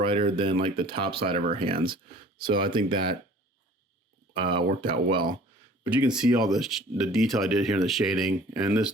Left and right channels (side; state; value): both; normal; correlation 0.49